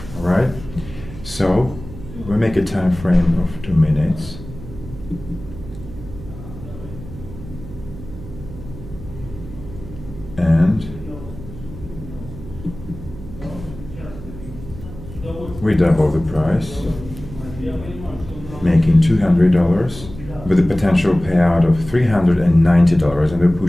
All right? So we make a time frame of 2 minutes. And we double the price, making $200 with a potential payout of $390, and a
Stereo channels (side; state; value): right; noise; hum, 14 dB below the sound